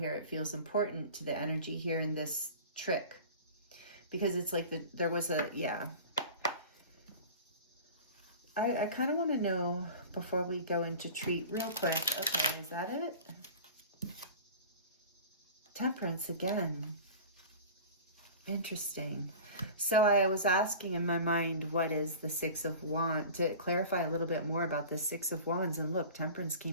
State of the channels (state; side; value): inverted; both; correlation -0.37